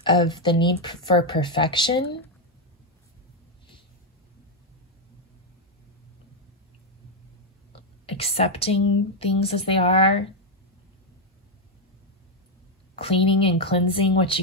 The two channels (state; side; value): normal; both; correlation 0.03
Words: of the need for perfection. Accepting things as they are. Cleaning and cleansing what